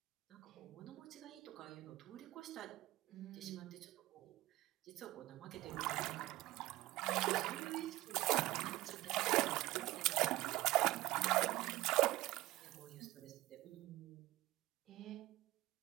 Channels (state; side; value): quieter; left; 18.1 dB